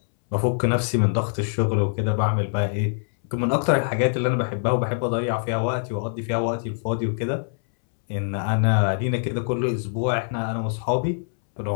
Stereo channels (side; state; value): right; silent; 63 dB below the other